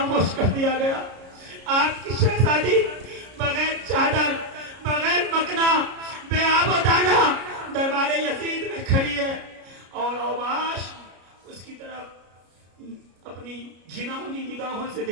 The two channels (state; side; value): late; left; 33 ms